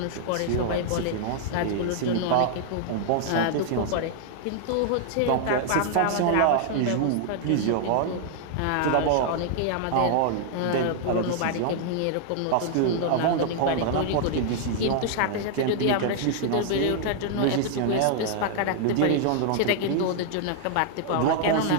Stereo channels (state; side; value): different; both; correlation -0.01